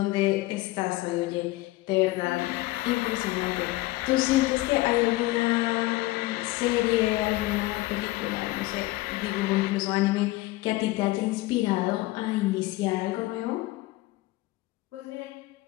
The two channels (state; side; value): quieter; right; 19.2 dB